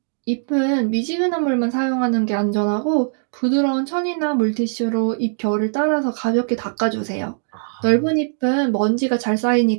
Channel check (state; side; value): silent; left; digital silence